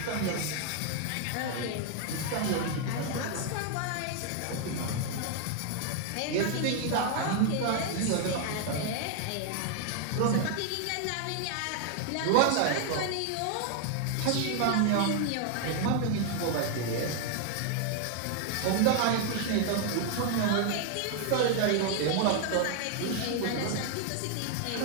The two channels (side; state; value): both; different; correlation 0.00